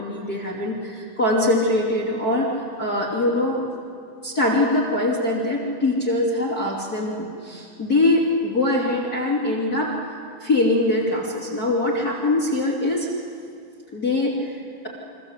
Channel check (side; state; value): both; normal; correlation -0.05